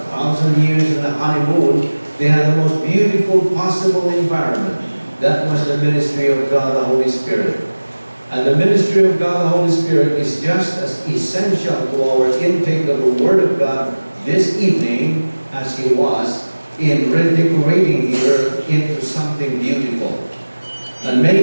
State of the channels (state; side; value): inverted; both; correlation -1.00